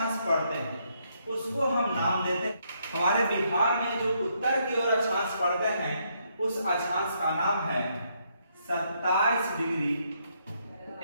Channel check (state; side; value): inverted; both; correlation -0.74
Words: पड़ते हैं उसको हम नाम देते हैं, हमारे बिहार में जो उत्तर की ओर अक्षांश पड़ते हैं उस अक्षांश का नाम है 27 डिग्री